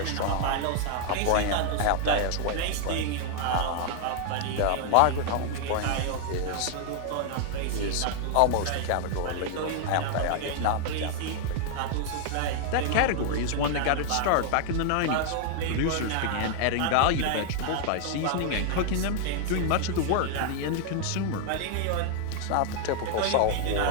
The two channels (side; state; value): both; different; correlation 0.00